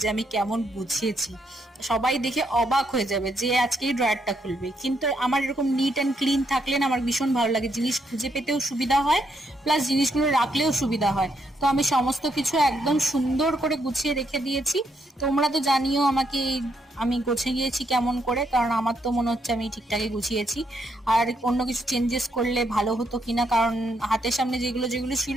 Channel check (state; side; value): normal; both; correlation 0.76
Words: যে আমি কেমন বুঝিয়েছি। সবাই দেখে অবাক হয়ে যাবে যে আজকেই ড্রয়ারটা খুলবে। কিন্তু আমার এরকম নিট অ্যান্ড ক্লিন থাকলে না আমার ভীষণ ভালো লাগে, জিনিস খুঁজে পেতেও সুবিধা হয়, প্লাস জিনিসগুলো রাখলেও সুবিধা হয়। তো আমি সমস্ত কিছু একদম সুন্দর করে গুছিয়ে রেখে দিয়েছি। তোমরা তো জানিও আমাকে আমি গুছিয়ে গিয়েছি কেমন করে, কারণ আমার তো মনে হচ্ছে আমি ঠিকঠাকই গুছিয়েছি। আর অন্য কিছু চেঞ্জেস করলে ভালো হতো কিনা, কারণ হাতের সামনে যেগুলো যেগুলো ছিল